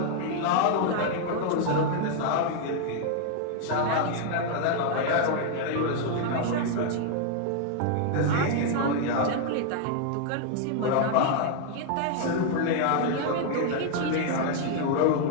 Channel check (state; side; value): different; both; correlation 0.00